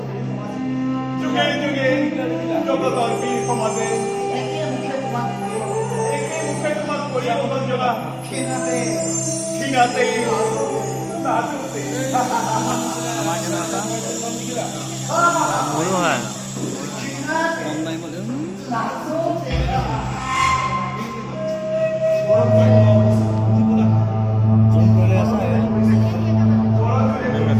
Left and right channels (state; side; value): identical; both; correlation 1.00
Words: জগতৰ বীৰ সমাজে একে মুখে তোমাক কৰি অৱদান জনা ক্ষীণাতে